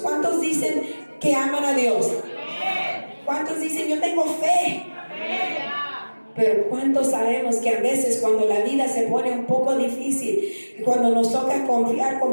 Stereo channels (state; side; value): inverted; both; correlation -1.00